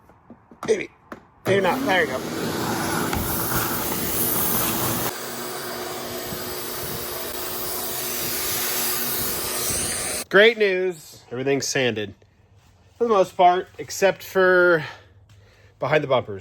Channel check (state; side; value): identical; both; correlation 1.00